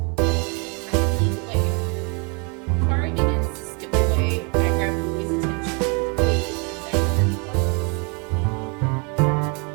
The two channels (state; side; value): quieter; left; 34.2 dB